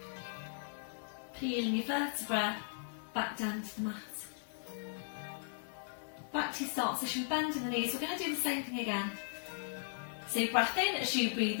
peeling your vertebra back down to the mat. Back to your start position, bending the knees. We're going to do the same thing again. So breath in as you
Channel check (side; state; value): right; silent; digital silence